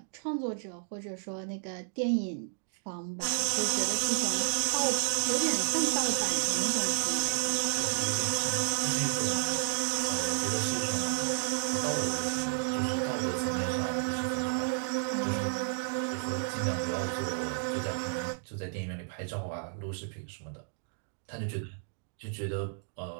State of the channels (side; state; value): left; silent; digital silence